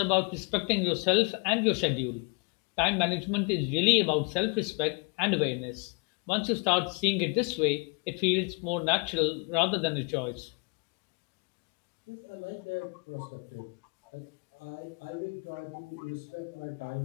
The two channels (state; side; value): quieter; right; 34.2 dB